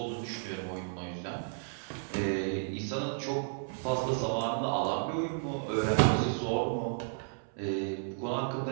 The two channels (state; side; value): silent; left; 56 dB below the other